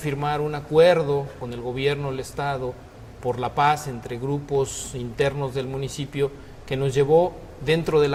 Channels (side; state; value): both; identical; correlation 1.00